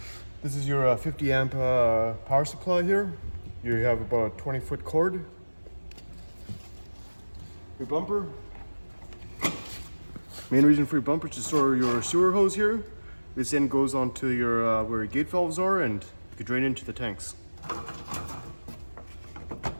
This is your 50 amp power supply here. You have about a 20-foot cord. Your bumper. Main reason for your bumper is to store your sewer hose here. This end goes onto your where your gate valves are and you can drain into the tanks.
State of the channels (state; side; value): inverted; both; correlation -1.00